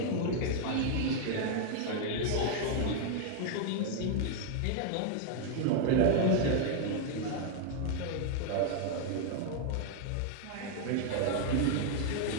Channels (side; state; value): both; different; correlation 0.00